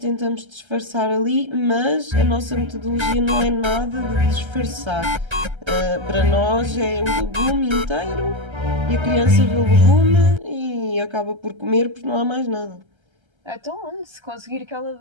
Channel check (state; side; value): late; left; 1.3 ms